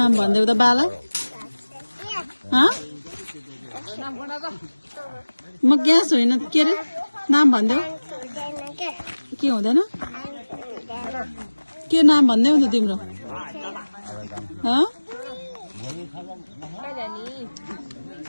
भन्देऊ त बाला म ग्यास होइन के अरे नाम भन्देऊ के हुँदैन के नाम भन्देऊ नि तिम्रो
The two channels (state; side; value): inverted; both; correlation -1.00